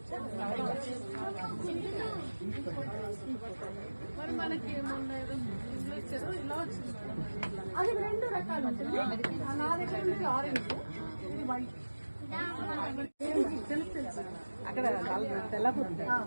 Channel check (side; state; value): both; inverted; correlation -1.00